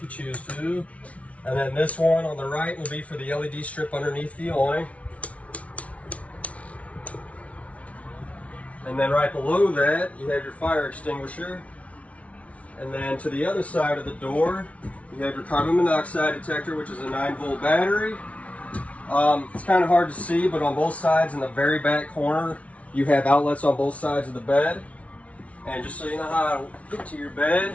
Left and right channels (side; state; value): right; late; 0.065 ms